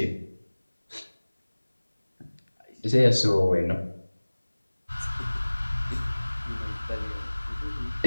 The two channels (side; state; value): both; inverted; correlation -1.00